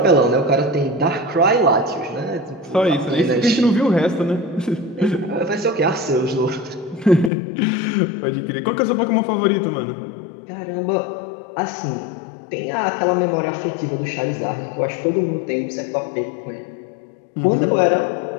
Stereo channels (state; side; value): drops out; right; at 7.3 s